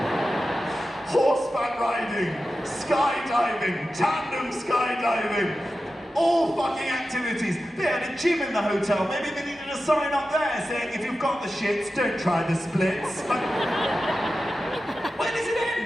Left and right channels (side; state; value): both; normal; correlation 0.92